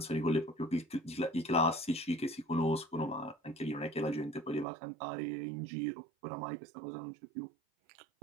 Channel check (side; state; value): left; drops out; at 4.7 s